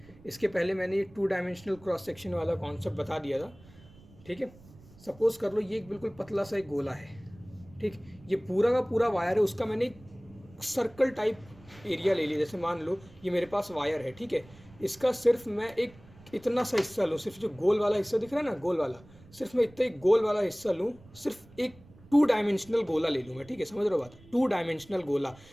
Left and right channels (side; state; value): right; noise; rumble, 23 dB below the sound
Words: इसके पहले मैंने ये 2 डायमेंशनल क्रॉस सेक्शन वाला कॉन्सेप्ट बता दिया था। ठीक है, सपोज़ कर लो ये एक बिल्कुल पतला सा एक गोला है। ठीक, ये पूरा का पूरा वायर है, उसका मैंने एक सर्कल टाइप एरिया ले लिया। जैसे मान लो ये मेरे पास वायर है। ठीक है, इसका सिर्फ मैं एक इतना सा हिस्सा लूँ, सिर्फ जो गोल वाला हिस्सा दिख रहा है ना, गोल वाला, सिर्फ मैं इतना एक गोल वाला हिस्सा लूँ, सिर्फ एक टू डायमेंशनल गोला ले लूँ मैं, ठीक है, समझ रहे हो बात, टू डायमेंशनल गोला,